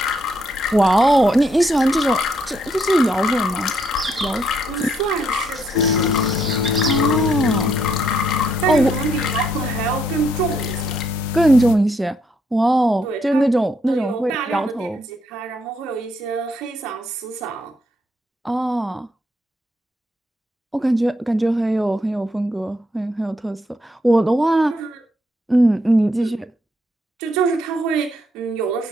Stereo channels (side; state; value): both; normal; correlation 0.75